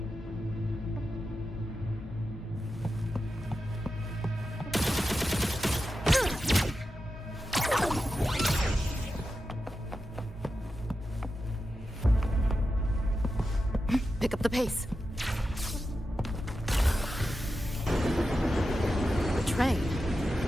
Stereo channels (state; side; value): normal; both; correlation 0.90